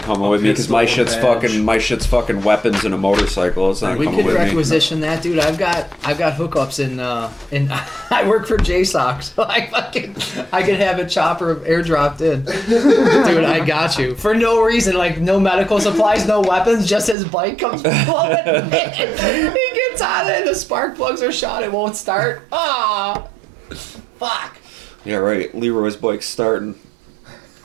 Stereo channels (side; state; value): left; drops out; at 17.2 s